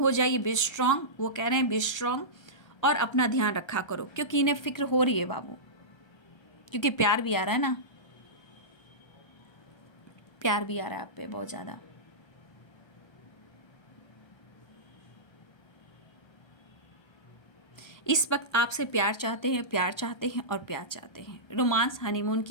जाइए। बी स्ट्रांग, वो कह रहे हैं बी स्ट्रांग, और अपना ध्यान रखा करो क्योंकि इन्हें फिक्र हो रही है बाबू, क्योंकि प्यार भी आ रहा है ना, प्यार भी आ रहा है आप पे बहुत ज़्यादा। इस वक्त आपसे प्यार चाहते हैं, प्यार चाहते हैं और प्यार चाहते हैं। रोमांस, हनीमून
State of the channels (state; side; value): late; right; 1.3 ms